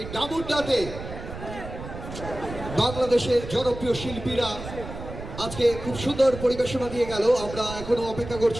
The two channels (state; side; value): noise; right; rumble, 10 dB below the sound